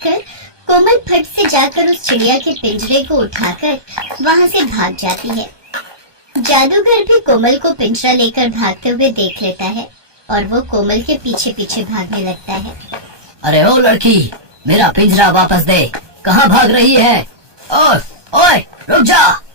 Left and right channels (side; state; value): left; late; 1.2 ms